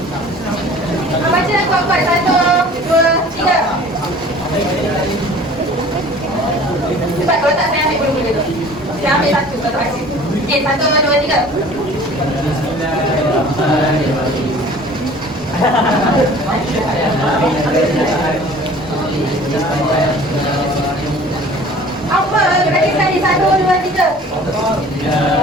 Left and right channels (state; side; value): normal; both; correlation 0.47